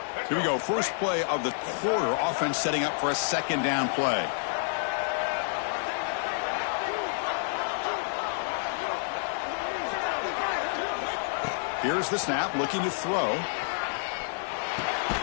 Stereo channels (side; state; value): right; silent; 58 dB below the other